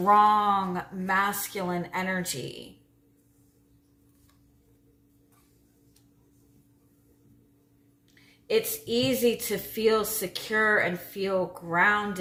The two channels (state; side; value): identical; both; correlation 1.00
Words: masculine energy. It's easy to feel secure and feel